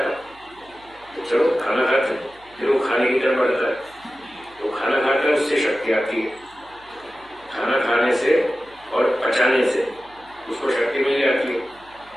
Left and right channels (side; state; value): right; noise; hum, 28 dB below the sound